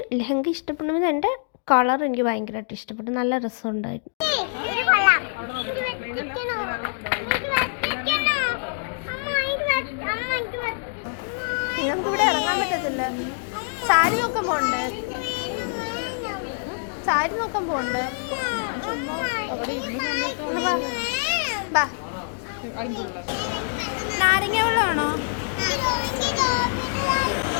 ലെഹങ്ക ഇഷ്ടപ്പെടുന്നത് എൻ്റെ കളർ എനിക്ക് ഭയങ്കരമായിട്ട് ഇഷ്ടപ്പെട്ടു, നല്ല രസമുണ്ടായിരുന്നു. നിങ്ങൾക്ക് ഇവിടെ ഇറങ്ങാൻ പറ്റത്തില്ല. സാരി നോക്കാൻ പോകണ്ടേ? സാരി നോക്കാൻ പോകണ്ടേ? നാരങ്ങ വെള്ളമാണോ?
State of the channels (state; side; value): silent; right; 61 dB below the other